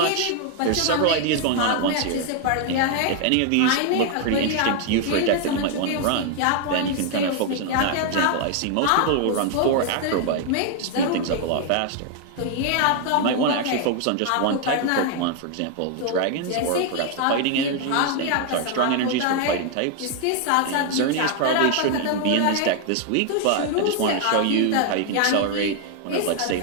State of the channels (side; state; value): both; different; correlation 0.00